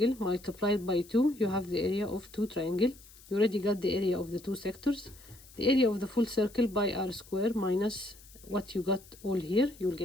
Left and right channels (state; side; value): noise; left; hiss, 22 dB below the sound